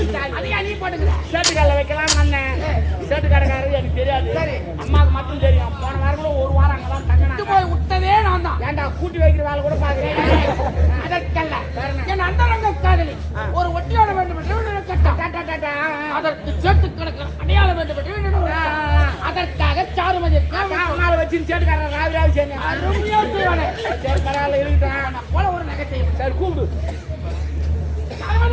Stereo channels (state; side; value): identical; both; correlation 1.00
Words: அதையா நீ போட்டுக்கிற? சேட்டுக்கால வைக்கலாம் அண்ணன். சேட்டுக்காரக்காரரு எனக்கு தெரியாது. அம்மாவுக்கு மட்டும் தெரியும். போன வாரம் கூட ஒரு வாரம் அங்கதான் விட்டு தங்கினாங்க. போய் விட்டதே நான் தான். ஏன்டா கூட்டி வைக்கிற வேலை கூட பாக்குறேன். அதற்கல்ல என் அந்தரங்க காதலி ஒரு ஒட்டியோட வேண்டும் என்று நினைக்கட்டும். அதற்கு சேட்டு கணக்கு அடையாளம் வேண்டும் என்று நினைக்கிறேன். அதற்காக சாருமதி அம்மாவை வச்சு சேட்டுக்காரன் ராவி சேர்ந்தேன். அருமையா செய்வானே. சரி பரவாயில்ல இருக்கட்டும். போல ஒரு நகை. சரி கூப்பிடு.